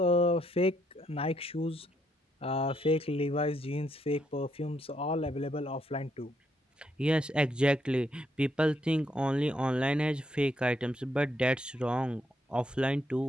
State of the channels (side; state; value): both; normal; correlation 0.75